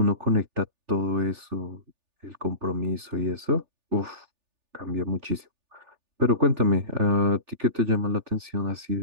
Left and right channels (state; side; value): late; left; 3.4 ms